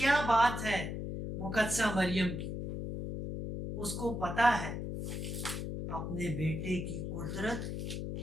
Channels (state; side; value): noise; left; hum, 4 dB below the sound